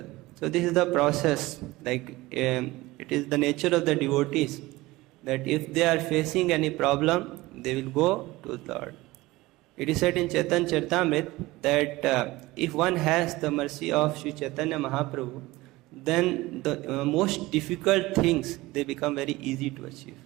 So this is the process, it is the nature of the devotees, that if they are facing any problem, they will go to the Lord. It is said in Chaitanya Charitamrita that if one has the mercy of Sri Chaitanya Mahaprabhu, then the most difficult things, they become very easy to achieve.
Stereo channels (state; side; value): quieter; left; 19.5 dB